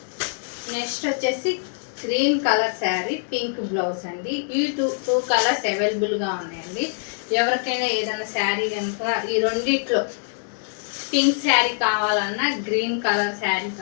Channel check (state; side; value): silent; right; digital silence